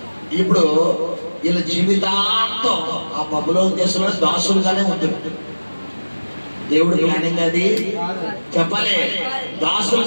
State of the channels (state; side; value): inverted; both; correlation -1.00